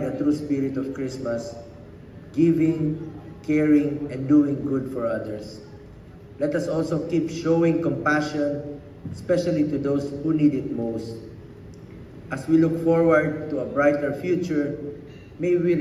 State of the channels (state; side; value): identical; both; correlation 1.00